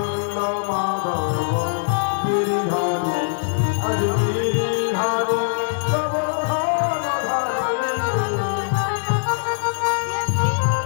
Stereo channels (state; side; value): silent; right; 64 dB below the other